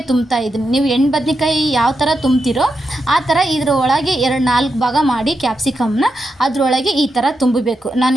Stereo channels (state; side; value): normal; both; correlation 0.86